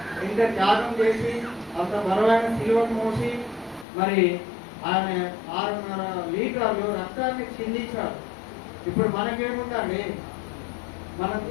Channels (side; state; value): right; drops out; at 3.9 s